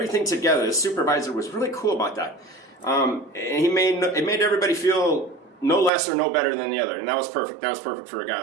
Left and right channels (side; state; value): left; drops out; at 5.9 s